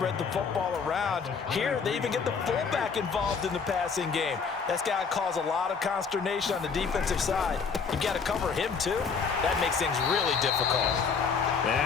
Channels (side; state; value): right; quieter; 5.6 dB